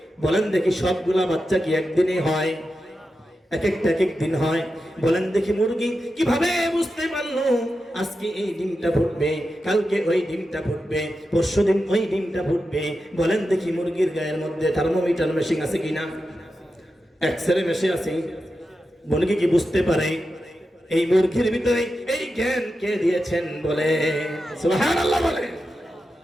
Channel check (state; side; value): normal; both; correlation 0.90